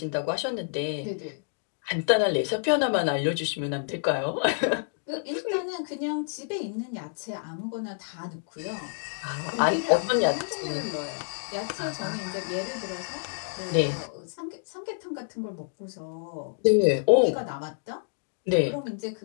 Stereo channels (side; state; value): right; silent; digital silence